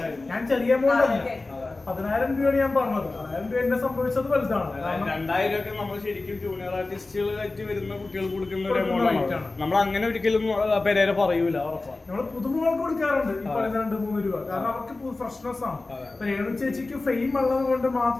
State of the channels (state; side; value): quieter; right; 3.3 dB